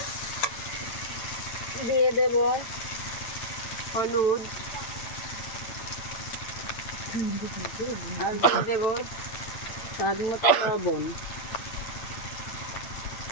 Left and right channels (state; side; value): late; right; 8.8 ms